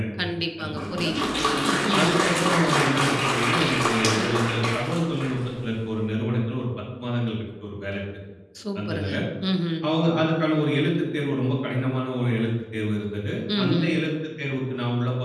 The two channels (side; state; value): both; identical; correlation 1.00